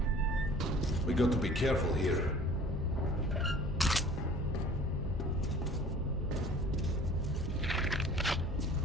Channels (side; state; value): both; normal; correlation 0.47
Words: We got to be careful here.